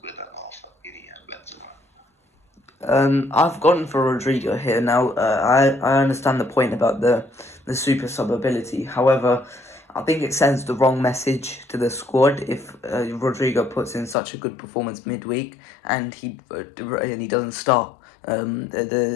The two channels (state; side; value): drops out; right; at 14.2 s